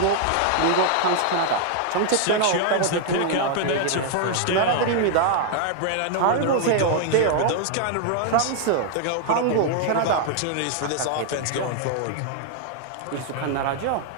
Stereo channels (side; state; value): both; different; correlation 0.00